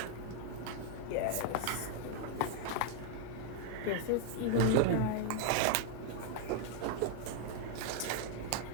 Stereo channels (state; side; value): different; both; correlation 0.00